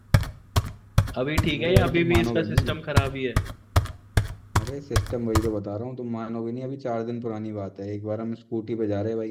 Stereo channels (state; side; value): identical; both; correlation 1.00